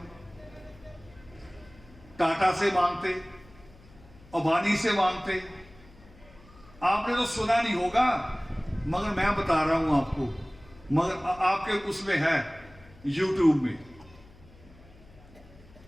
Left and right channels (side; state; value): left; noise; hum, 24 dB below the sound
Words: टाटा से मांगते, अंबानी से मांगते। आपने तो सुना नहीं होगा, मगर मैं बता रहा हूं आपको, मगर आपके उसमें है, यूट्यूब में